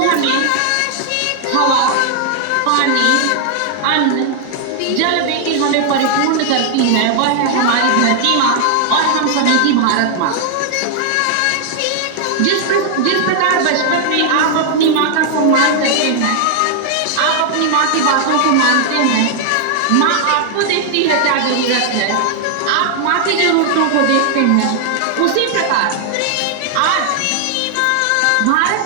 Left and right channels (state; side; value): different; both; correlation 0.00